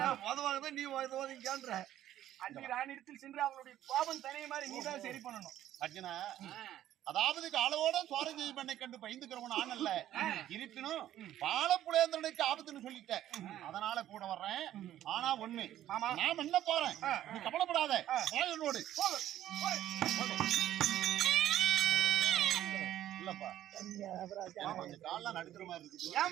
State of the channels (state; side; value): quieter; left; 12.5 dB